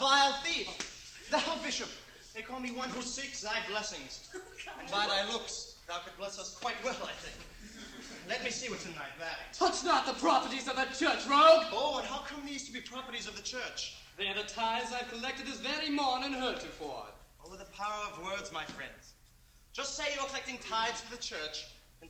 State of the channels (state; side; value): identical; both; correlation 1.00